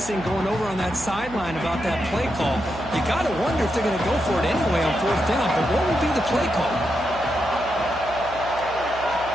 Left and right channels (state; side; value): noise; right; hum, 15 dB below the sound